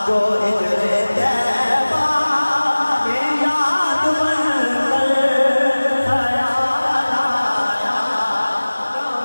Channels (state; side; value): inverted; both; correlation -1.00